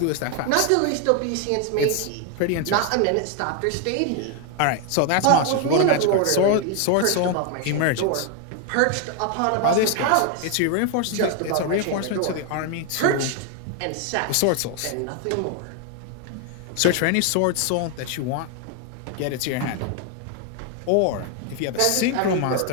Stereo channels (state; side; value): different; both; correlation 0.00